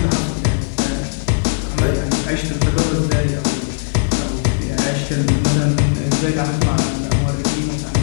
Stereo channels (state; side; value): silent; right; 57 dB below the other